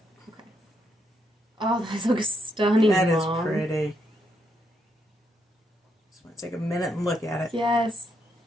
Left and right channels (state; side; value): normal; both; correlation 0.78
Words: Okay. Oh, that looks stunning, That is Mom. pretty. Just want to take a minute and look at it. Yes.